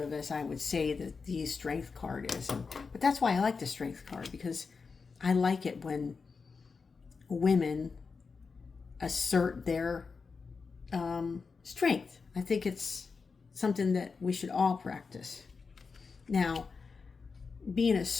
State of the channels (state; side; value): quieter; right; 4.9 dB